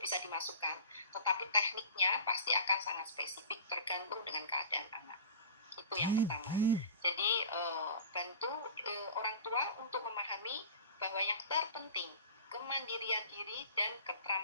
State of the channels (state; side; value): inverted; both; correlation -0.39